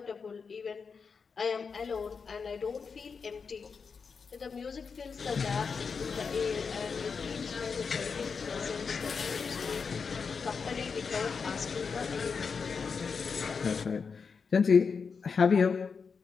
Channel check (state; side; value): quieter; right; 5.5 dB